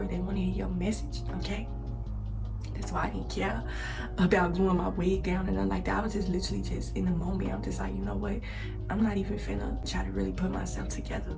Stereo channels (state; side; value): identical; both; correlation 1.00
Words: they want to hear your message. Okay, that's why I didn't care about gluing my wig down and nothing like that. I was just literally just in the moment. I'm just like, you know what, I'm not even finna try to really put myself together